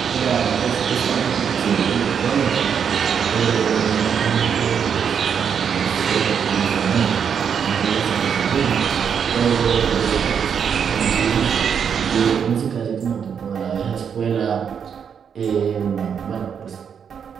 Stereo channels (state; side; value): quieter; left; 7.4 dB